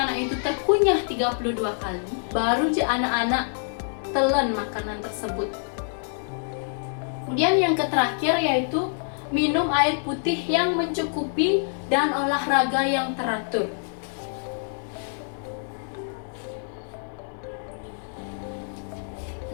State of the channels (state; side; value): silent; right; digital silence